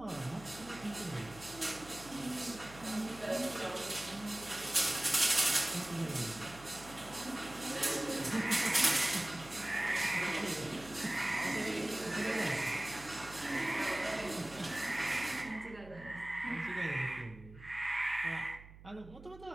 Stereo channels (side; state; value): right; noise; hum, 18 dB below the sound